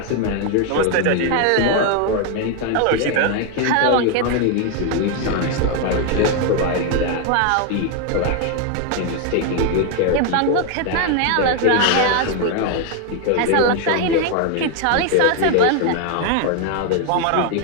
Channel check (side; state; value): both; different; correlation 0.01